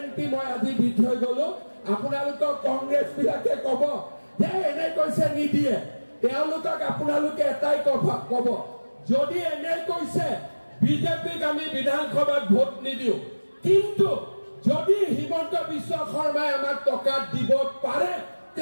মই আজি দি থৈ গলো। আপোনালোকক কংগ্ৰেছ বিলাকে কব যে এনে কৈছে নিদিয়ে, তেওঁলোকক আপোনালোকে এটাই কব যদি এনে কৈছে বিজেপিক আমি বিধানসভাত ভোট নিদিও, কিন্তু যদি হিমন্ত বিশ্ব শৰ্মাই আমাক টকা দিব পাৰে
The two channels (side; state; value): both; inverted; correlation -1.00